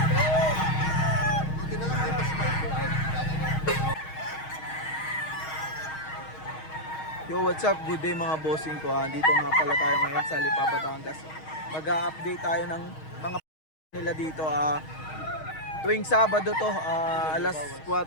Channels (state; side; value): late; right; 6.4 ms